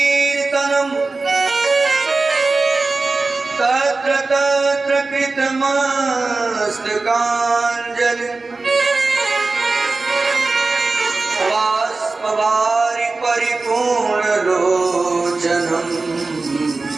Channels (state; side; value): quieter; left; 3.6 dB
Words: तत्र तत्र कृतमस्तकाञ्जलि बाष्पवारि परिपूर्णलोचनम्